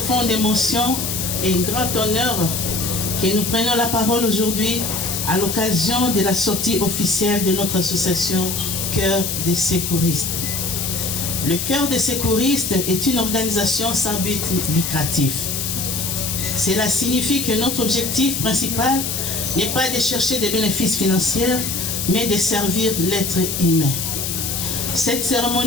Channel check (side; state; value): left; noise; hiss, 2 dB below the sound